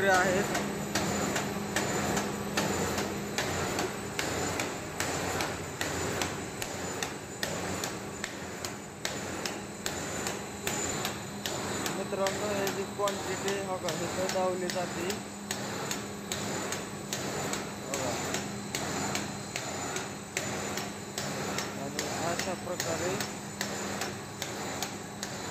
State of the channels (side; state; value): both; identical; correlation 1.00